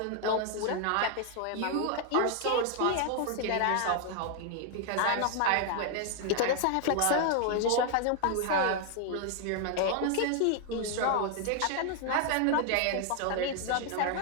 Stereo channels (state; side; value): different; both; correlation 0.00